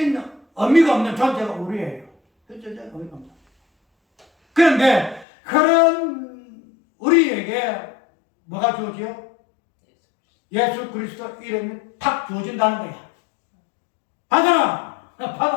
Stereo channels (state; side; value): drops out; right; at 5.2 s